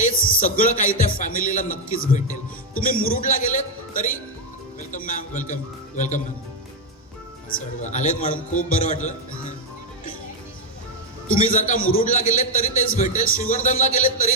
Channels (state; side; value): normal; both; correlation 0.03